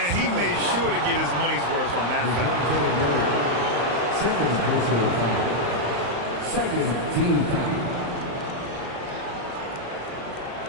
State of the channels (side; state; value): left; late; 35 ms